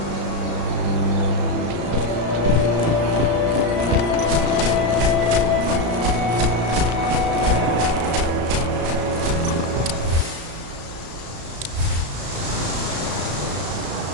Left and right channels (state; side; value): late; left; 35 ms